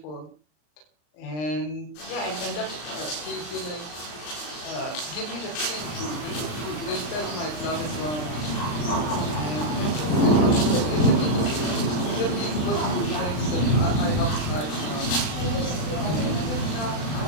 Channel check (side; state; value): right; late; 39 ms